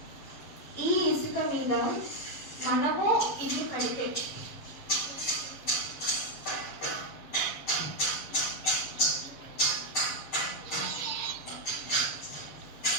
ఈ ఇసుక మీద మనము ఇల్లు కడితే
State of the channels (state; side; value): late; right; 7.3 ms